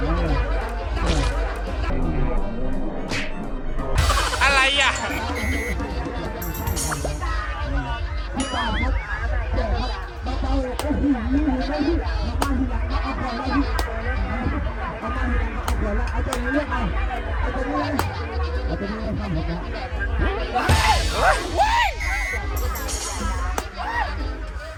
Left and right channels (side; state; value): both; identical; correlation 1.00